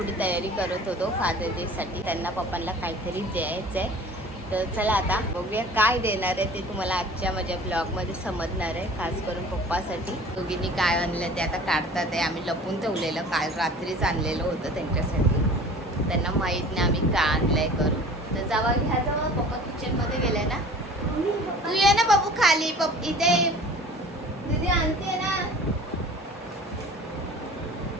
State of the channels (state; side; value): normal; both; correlation 0.44